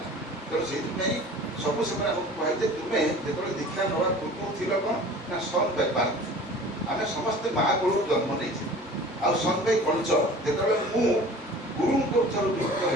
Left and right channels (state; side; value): normal; both; correlation 0.43